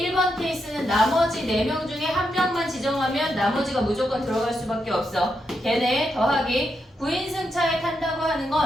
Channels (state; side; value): normal; both; correlation 0.83